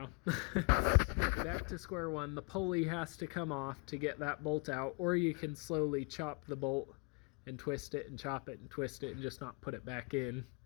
back to square one. The pulley has to come off to get that bolt out, or you can slowly chop the bolt and twist it and chop it and twist it and just not put it back in.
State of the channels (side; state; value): right; quieter; 33.7 dB